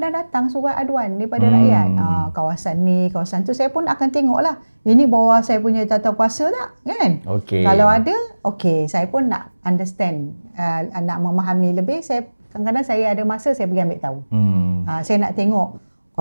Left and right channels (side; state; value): both; inverted; correlation -1.00